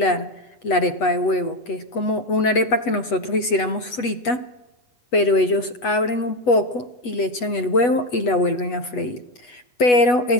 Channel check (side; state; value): right; late; 8.1 ms